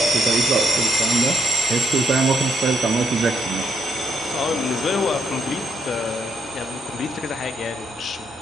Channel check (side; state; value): both; normal; correlation 0.76